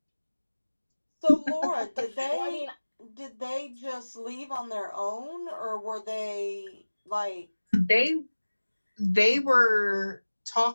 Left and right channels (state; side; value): inverted; both; correlation -1.00